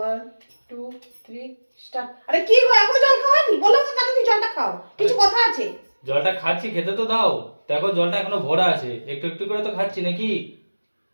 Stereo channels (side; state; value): both; inverted; correlation -1.00